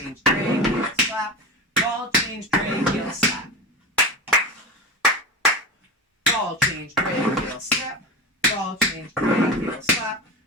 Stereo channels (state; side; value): normal; both; correlation 0.26